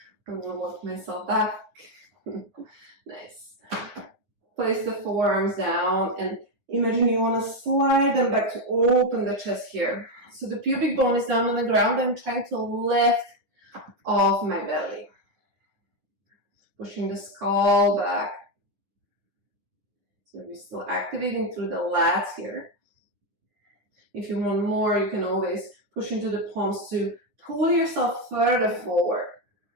I'm going to walk myself back. Nice. Place the forearms down and imagine you want to slide them back to open the chest here. So the pubic bone is down on the ground. I'm trying to lift off my belly. Pushing the skull back. So we're still activating through the lats here. If you want more, you can always push into the palms to pull yourself further forward.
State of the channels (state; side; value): late; left; 10 ms